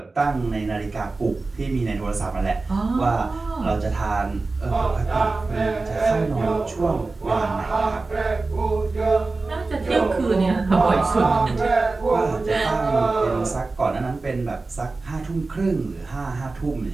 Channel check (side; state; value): left; quieter; 3.6 dB